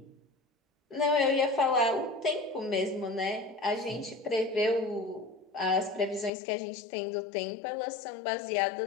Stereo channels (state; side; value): drops out; right; at 6.3 s